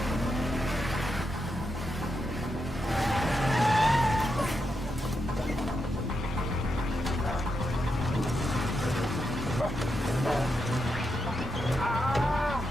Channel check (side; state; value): both; normal; correlation 0.84